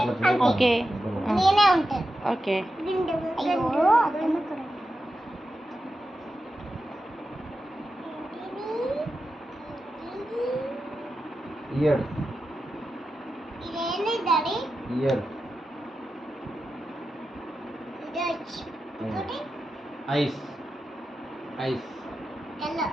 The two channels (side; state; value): both; normal; correlation 0.90